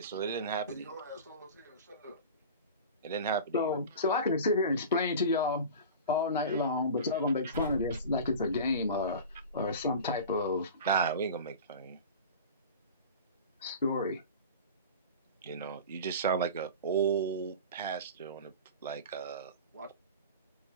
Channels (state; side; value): inverted; both; correlation -0.33